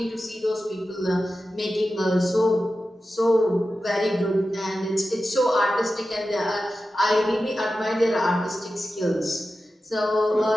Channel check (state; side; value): normal; both; correlation 0.93